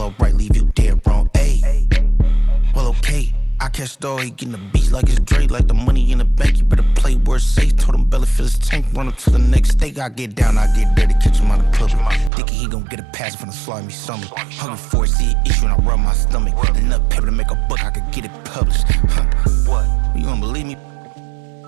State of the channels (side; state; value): left; drops out; at 12.3 s